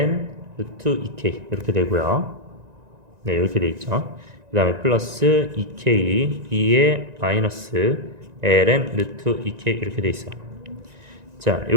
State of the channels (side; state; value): left; late; 1.9 ms